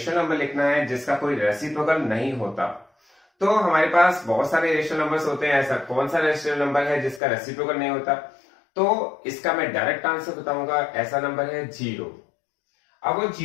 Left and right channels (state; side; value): drops out; right; at 7.2 s